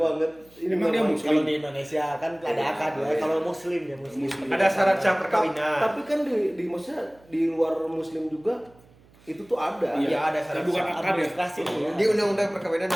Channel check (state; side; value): noise; right; hum, 28 dB below the sound